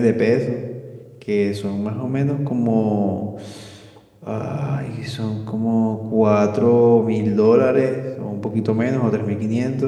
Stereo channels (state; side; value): identical; both; correlation 1.00